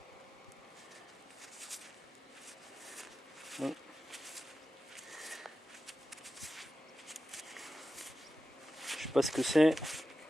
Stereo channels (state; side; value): normal; both; correlation 0.93